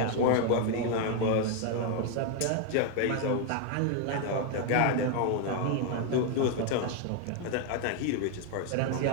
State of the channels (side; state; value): both; different; correlation 0.00